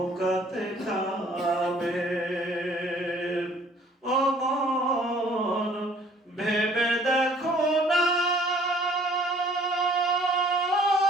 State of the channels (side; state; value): both; normal; correlation 0.56